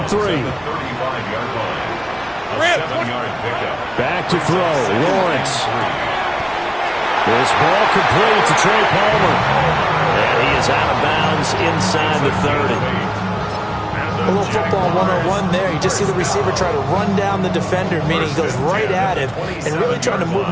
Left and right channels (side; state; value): right; noise; hum, 28 dB below the sound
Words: 3. Back to throw. Lawrence. This ball complete to Trey Palmer. And he is out of bounds inside the 30. A little football 101 there. You just see the receiver try to run down the defender, meaning he goes right at him and really trying to move